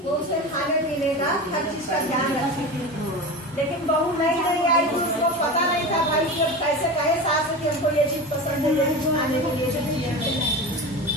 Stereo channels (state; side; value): normal; both; correlation 0.27